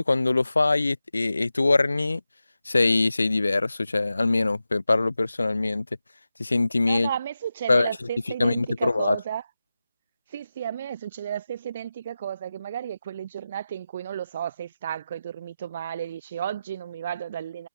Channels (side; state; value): both; inverted; correlation -0.93